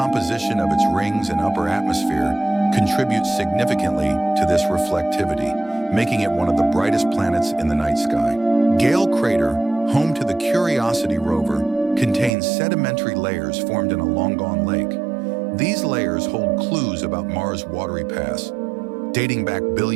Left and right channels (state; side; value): drops out; left; at 12.3 s